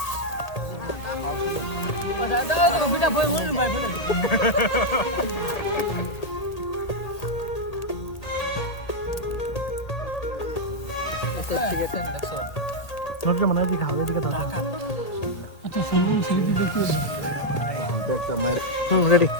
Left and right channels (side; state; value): right; late; 1.8 ms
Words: নুরুজ্জামান এদিকে হাওয়া এদিকে দাও। রেডি।